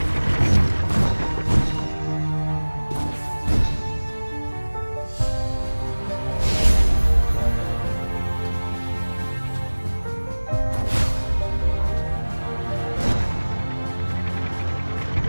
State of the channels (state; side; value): inverted; both; correlation -1.00